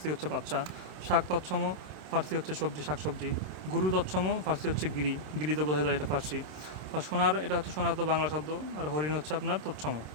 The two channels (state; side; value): late; left; 26 ms